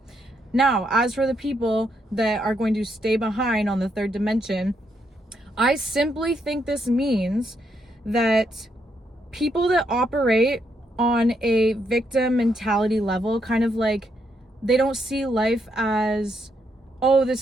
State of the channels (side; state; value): both; normal; correlation 0.77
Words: Now, as for the people that are going to stay behind on the third dimension, I simply think this means that people that operate on a victim mentality level, kind of like, they don't see life as, oh, this